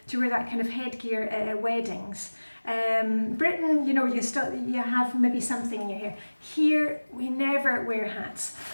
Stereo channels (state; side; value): inverted; both; correlation -1.00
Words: wear that kind of headgear at weddings. Britain, you have maybe something in your hair. Here, we never wear hats.